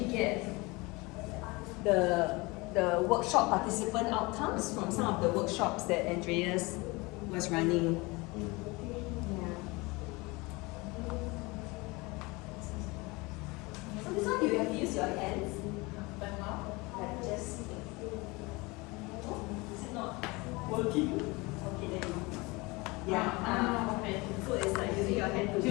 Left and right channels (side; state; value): right; quieter; 24.7 dB